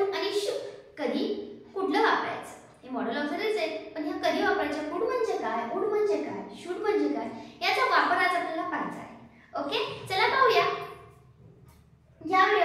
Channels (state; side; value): identical; both; correlation 1.00